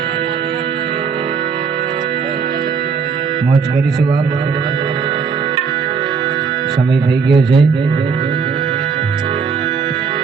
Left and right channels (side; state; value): left; quieter; 5.8 dB